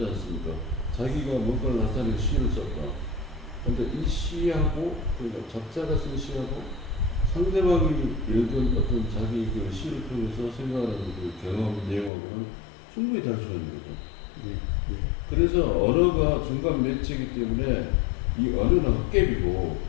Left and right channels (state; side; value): drops out; right; at 12.1 s